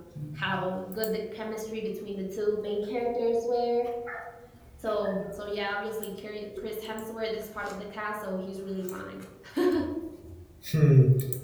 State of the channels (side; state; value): both; identical; correlation 1.00